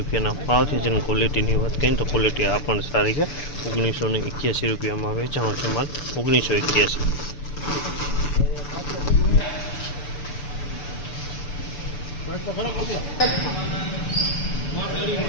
ભાવ છે। જેની ક્વોલિટીની વાત કરીએ તો ક્વોલિટી આ પણ સારી છે। ₹1981 રૂપિયામાં વેચાણો છે માલ 1981।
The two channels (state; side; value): late; right; 6.9 ms